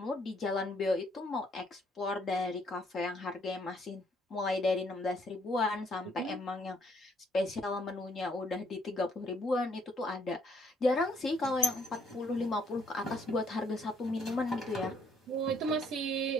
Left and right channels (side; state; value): both; normal; correlation 0.66